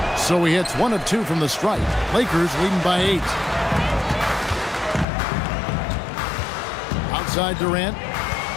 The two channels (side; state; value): right; drops out; at 5.1 s